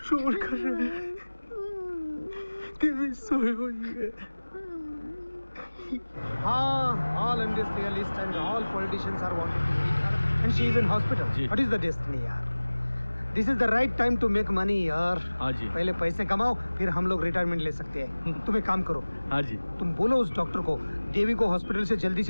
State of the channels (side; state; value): both; inverted; correlation -1.00